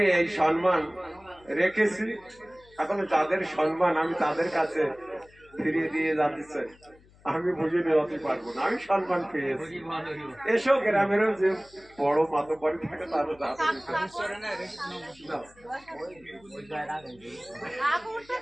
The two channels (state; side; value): noise; left; hum, 27 dB below the sound